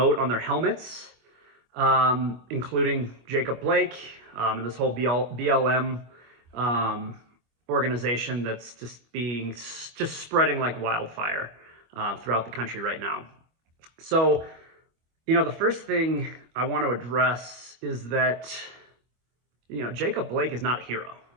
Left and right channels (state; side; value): late; left; 25 ms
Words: on their helmets, including Jacob Blake and this whole BLM organization that's just spreading like wildfire throughout the country right now. So, the first thing I want to address is that Jacob Blake is not a hero.